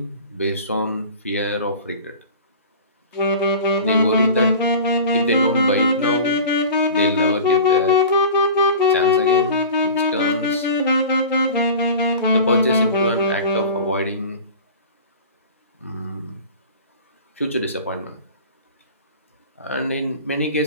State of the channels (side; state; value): both; inverted; correlation -0.37